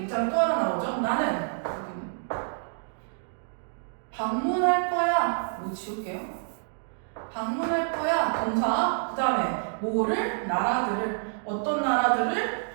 또 하나 나오죠. 나는 방문할 거야. 뭐 지울게요. 방문할 거야. 동사 그 다음에 뭐를? 나라들을 어떤 나라들을?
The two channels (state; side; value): silent; left; digital silence